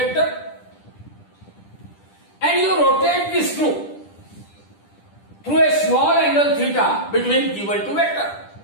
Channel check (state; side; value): late; right; 10 ms